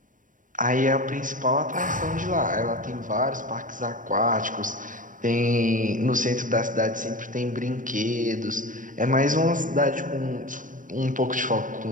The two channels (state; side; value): late; left; 0.38 ms